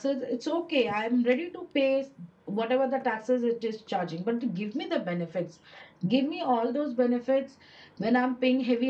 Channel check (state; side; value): identical; both; correlation 1.00